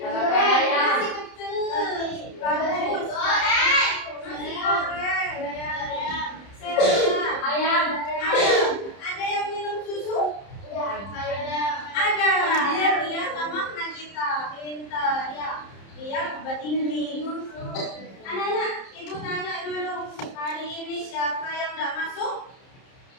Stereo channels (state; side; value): late; right; 30 ms